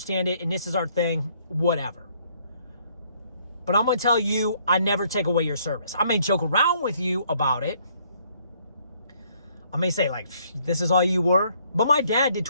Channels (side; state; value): both; inverted; correlation -0.66